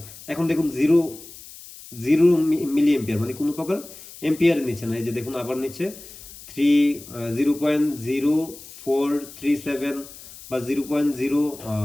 এখন দেখুন জিরো জিরো মিলি এম্পিয়ার মানে কোনো প্রকার এম্পিয়ার নিচ্ছে না। এই যে দেখুন আবার নিচ্ছে 0.0437 বা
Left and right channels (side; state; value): left; noise; hiss, 17 dB below the sound